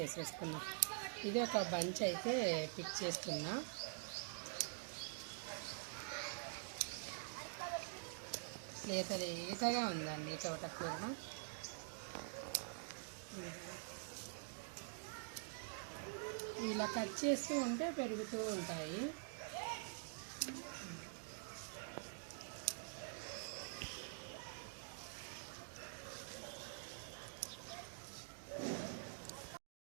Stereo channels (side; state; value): left; silent; digital silence